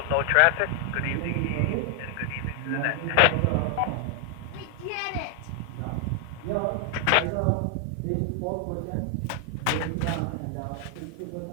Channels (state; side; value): different; both; correlation 0.00